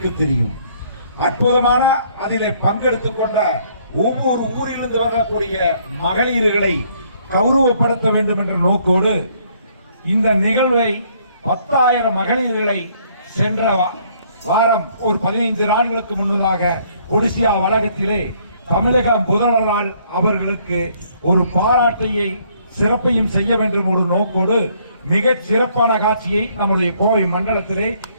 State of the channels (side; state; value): both; inverted; correlation -0.65